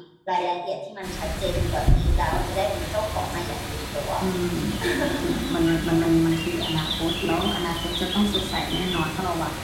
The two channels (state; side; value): identical; both; correlation 1.00